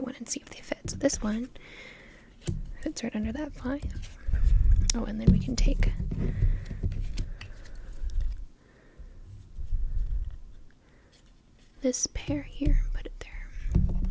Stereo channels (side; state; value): both; identical; correlation 1.00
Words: and see if they fit. So this one fits right under that 5. Oh, and then we can take this pair here and put it there.